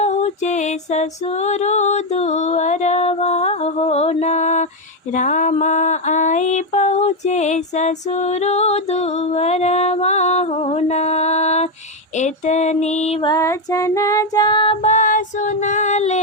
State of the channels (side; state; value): both; normal; correlation 0.05